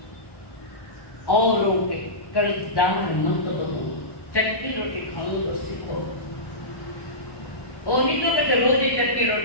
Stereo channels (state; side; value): late; right; 1.1 ms